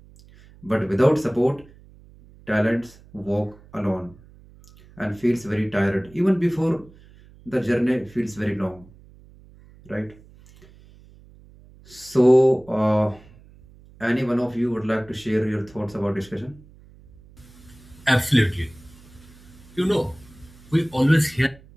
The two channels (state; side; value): noise; right; hum, 24 dB below the sound